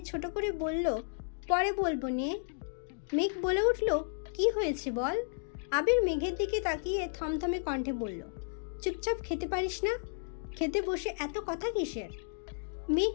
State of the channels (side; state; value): right; silent; digital silence